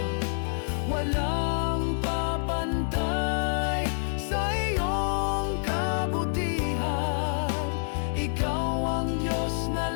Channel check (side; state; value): right; silent; 60 dB below the other